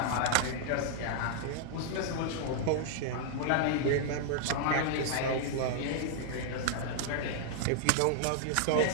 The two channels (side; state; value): both; different; correlation -0.01